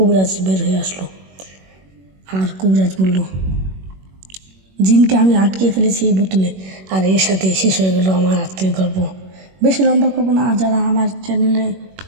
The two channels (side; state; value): left; late; 21 ms